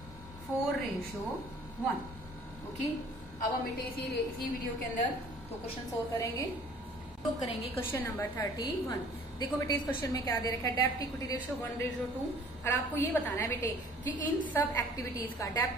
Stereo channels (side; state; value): both; normal; correlation 0.52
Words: ओके, अब हम बेटे इसी वीडियो के अंदर तो क्वेश्चन सोल्व करेंगे। तो करेंगे क्वेश्चन नंबर 31। देखो बेटे इस क्वेश्चन में क्या दे रखा है, डेप्ट इक्विटी रेशियो 1:2 और आपको ये बताना है बेटे कि इन सब एक्टिविटीज का